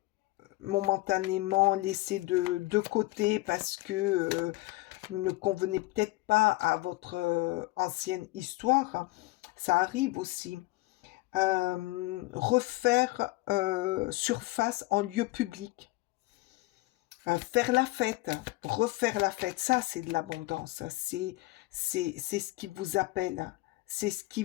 momentanément laissé de côté parce que ne convenait peut-être pas à votre ancienne histoire. Ça arrive aussi. Refaire surface en lieu public. Faire la fête, refaire la fête, ça c'est de l'abondance, c'est ce qui vous appelle, c'est ce qui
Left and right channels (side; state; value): right; quieter; 20.6 dB